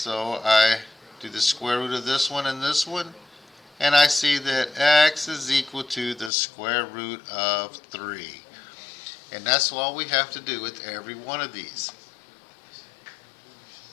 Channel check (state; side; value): drops out; right; at 6.3 s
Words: I do the square root of this one and this one. And I see that x is equal to the square root of 3. And that's all we have to do with every one of these.